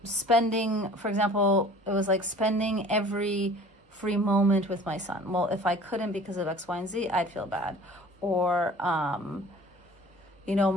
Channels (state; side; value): normal; both; correlation 0.47